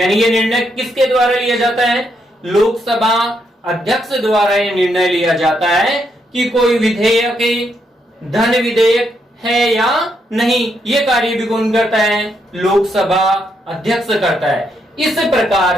ये निर्णय किसके द्वारा लिया जाता है? लोकसभा अध्यक्ष द्वारा ये निर्णय लिया जाता है कि कोई विधेयक धन विधेयक है या नहीं। ये कार्य भी कौन करता है? लोकसभा अध्यक्ष करता है। इस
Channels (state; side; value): normal; both; correlation 0.78